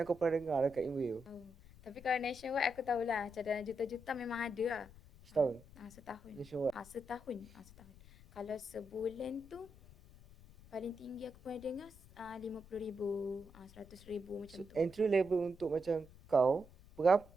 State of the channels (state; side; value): noise; left; rumble, 21 dB below the sound